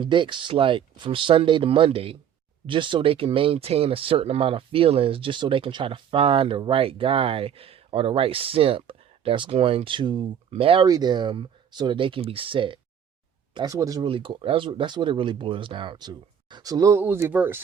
dicks like from Sunday to Monday just so they can maintain a certain amount of feelings, just so they can try to find the right guy or the right simp that's going to marry them so that they can be set. That's what it's really that's what it really boils down to. So Lil Uzi Vert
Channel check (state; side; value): quieter; left; 8.7 dB